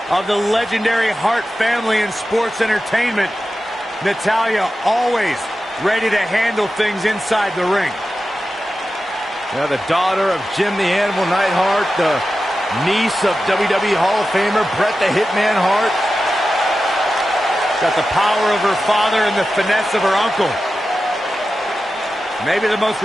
of the legendary Hart family in sports entertainment. Natalya always ready to handle things inside the ring. Yeah, the daughter of Jim the Animal Neidhart, the niece of WWE Hall of Famer Bret the Hitman Hart. Got the power of her father and the finesse of her uncle. Maybe the most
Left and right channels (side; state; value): both; normal; correlation 0.93